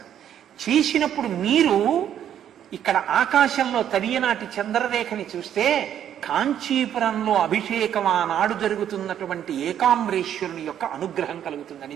చేసినప్పుడు మీరు ఇక్కడ ఆకాశంలో తదియనాటి చంద్రరేఖని చూస్తే కాంచీపురంలో అభిషేకం ఆనాడు జరుగుతున్నటువంటి ఏకాంబరేశ్వరుని యొక్క అనుగ్రహం కలుగుతుందని.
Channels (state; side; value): quieter; left; 10.0 dB